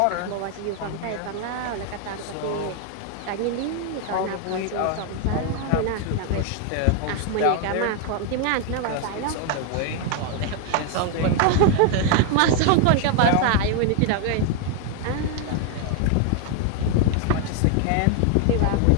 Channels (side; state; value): both; different; correlation 0.00